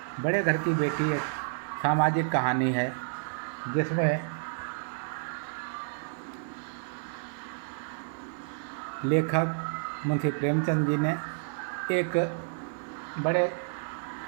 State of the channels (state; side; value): silent; left; digital silence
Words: बड़े घर की बेटी एक सामाजिक कहानी है जिसमें लेखक मुंशी प्रेमचंद जी ने एक बड़े